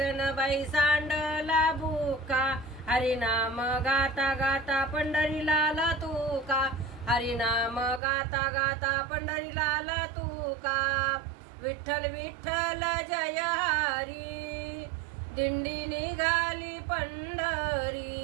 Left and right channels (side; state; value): left; drops out; at 8.0 s